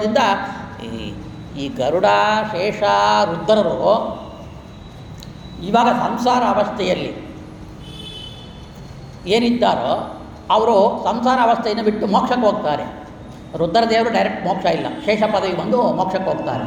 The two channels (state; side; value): identical; both; correlation 1.00